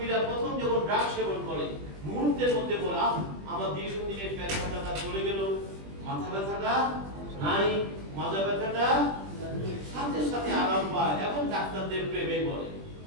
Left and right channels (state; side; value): late; left; 20 ms